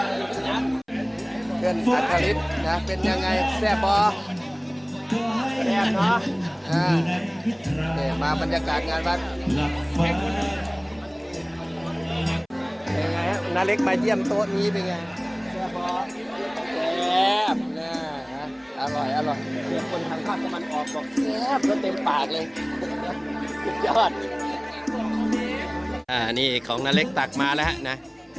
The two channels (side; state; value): both; identical; correlation 1.00